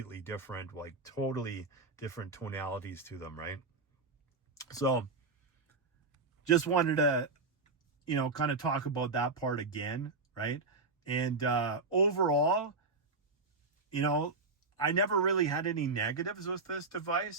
different, like totally different tonalities to them, right? So just wanted to, kind of talk about that part again, right? And overall, I never really had any negatives with this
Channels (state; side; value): quieter; left; 3.7 dB